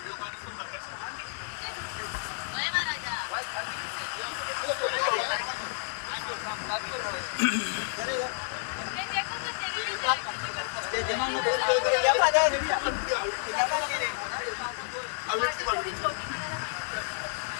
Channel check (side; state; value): right; silent; 58 dB below the other